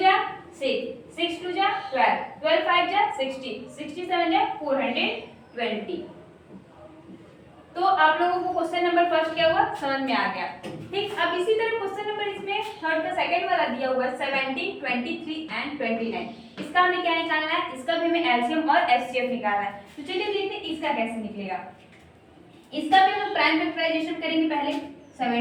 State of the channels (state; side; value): identical; both; correlation 1.00